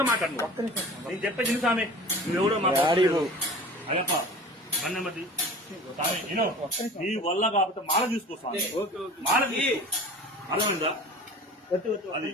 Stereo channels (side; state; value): both; normal; correlation 0.40